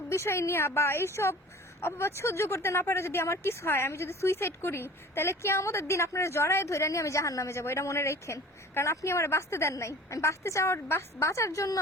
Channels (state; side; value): normal; both; correlation 0.43